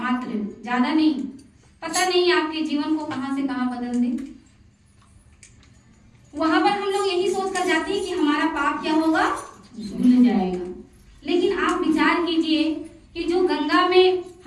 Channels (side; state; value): both; identical; correlation 1.00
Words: ज्यादा नहीं। पता नहीं आपके जीवन को कहां से कहां बदल दे। वहां पर हम लोग यही सोच कर जाते हैं कि हमारा पाप क्या होगा? धुल जाएगा। लेकिन आप विचार कीजिए कि जो गंगा में